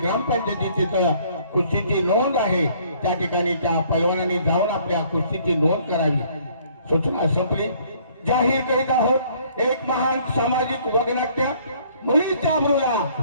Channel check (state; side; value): inverted; both; correlation -0.60